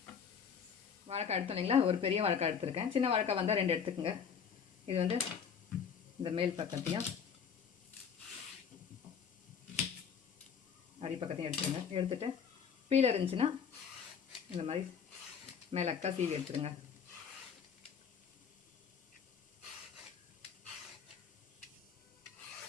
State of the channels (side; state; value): right; quieter; 7.0 dB